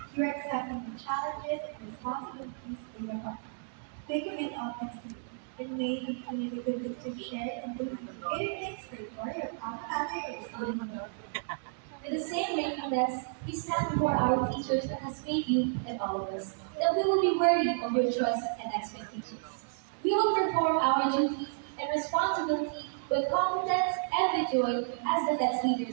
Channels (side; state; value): left; silent; digital silence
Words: you are accepting the challenges and responsibilities laid upon you. They commit authenticity and may continue the good things you've shared and do greater things for your family, or student. With the same gratefulness, we stand before our teachers that has made you and all of us, that we will be worthy of your trust and expectations. We will perform our duties and responsibility with competence and with joy as the best